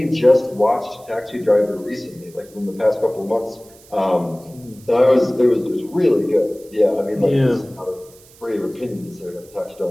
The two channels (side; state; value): right; noise; hiss, 25 dB below the sound